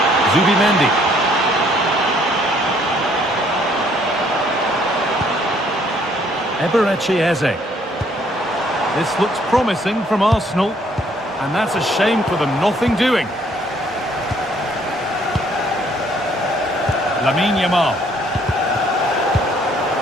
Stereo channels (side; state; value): both; normal; correlation 0.64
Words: Zubimendi. Eberechi Eze. This looks promising from Arsenal, and that's a shame for them, nothing doing. Lamine Yamal.